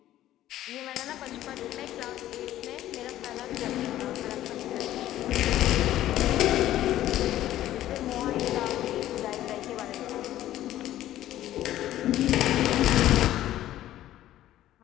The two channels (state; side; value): quieter; right; 13.5 dB